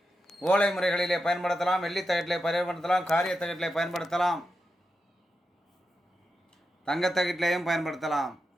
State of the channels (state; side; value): normal; both; correlation 0.88